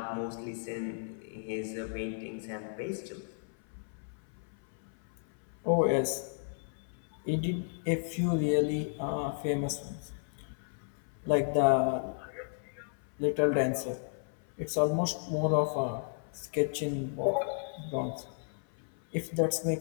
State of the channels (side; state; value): right; silent; 55 dB below the other